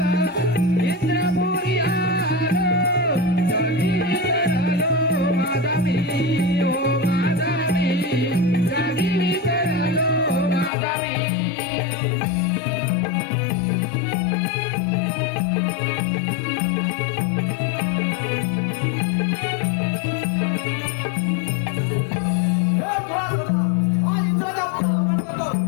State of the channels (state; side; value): drops out; right; at 10.7 s